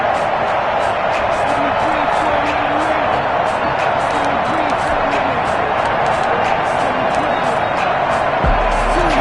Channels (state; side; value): identical; both; correlation 1.00